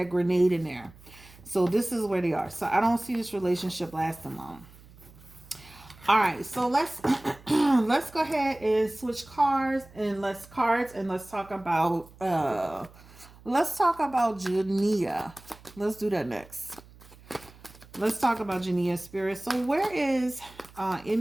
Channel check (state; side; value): noise; right; hum, 23 dB below the sound